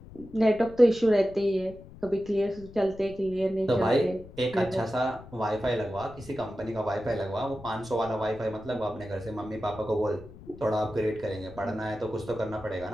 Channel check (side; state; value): left; noise; rumble, 18 dB below the sound